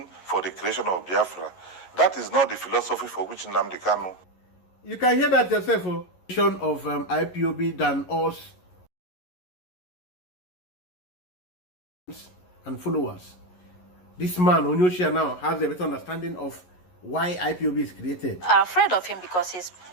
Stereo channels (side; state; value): right; late; 11 ms